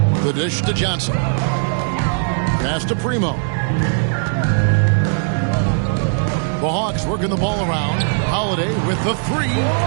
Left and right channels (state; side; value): silent; left; digital silence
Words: The dish to Johnson. Pass to Primo. The Hawks working the ball around. Holiday with the 3.